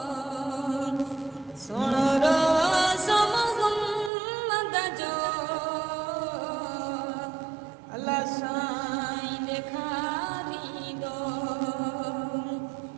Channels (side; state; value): left; drops out; at 4.1 s